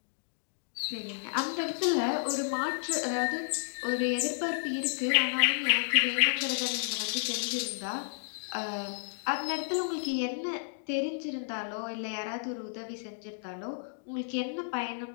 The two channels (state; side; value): silent; right; digital silence